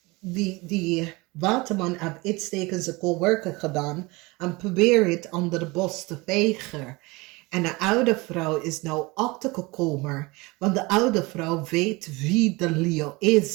die waterman heeft iets tegen zijn coworker gedaan en probeert het onder de bos te vegen. En de oude vrouw is nou achtergekomen, want de oude vrouw weet wie de Leo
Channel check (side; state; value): left; quieter; 24.1 dB